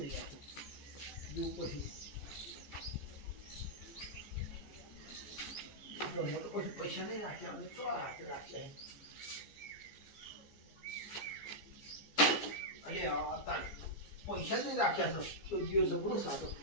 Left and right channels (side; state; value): right; late; 14 ms